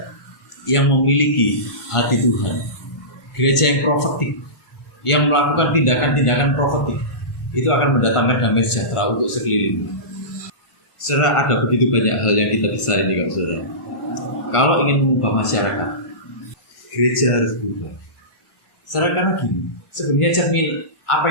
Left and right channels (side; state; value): right; late; 1.4 ms